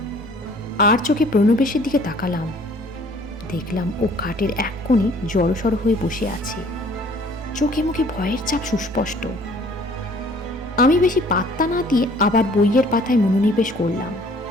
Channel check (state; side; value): normal; both; correlation 0.55